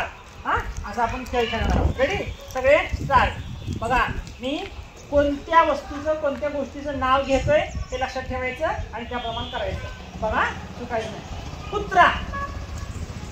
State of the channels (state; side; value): identical; both; correlation 1.00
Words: असं आपण खेळ खेळणार आहोत. रेडी? सगळे स्टार्ट. बघा, मी कोणत्या वस्तूचं कोणत्या गोष्टीचं नाव घेतोय हे लक्षात ठेवायचं आणि त्याप्रमाणे करायचं. बघा, चुकायचं नाही. कुत्रा.